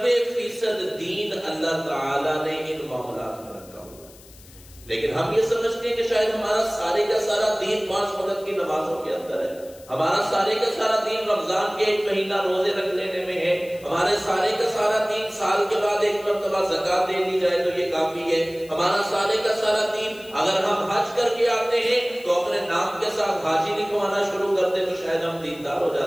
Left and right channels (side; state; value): left; noise; hiss, 23 dB below the sound